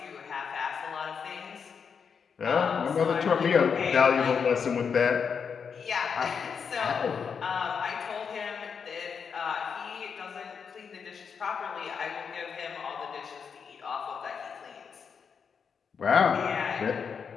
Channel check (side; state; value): right; quieter; 6.4 dB